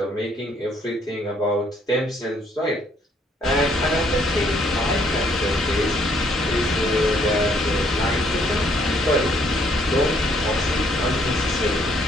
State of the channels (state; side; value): normal; both; correlation 0.66